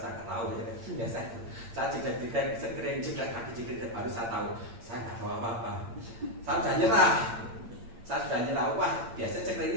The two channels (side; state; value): left; late; 8.8 ms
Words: nggak tahu ya. Biasa itu, saya jeglek sekering jeglek kaki jeglek, baru saya tahu, saya nggak tahu apa-apa. Saya sudah nyerah. Saya sudah nyerah, wah biasa ceklek